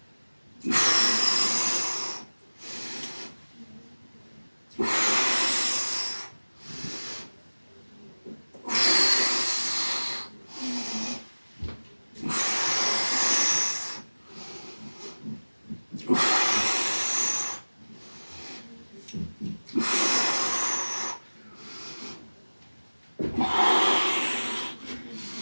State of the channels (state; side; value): inverted; both; correlation -1.00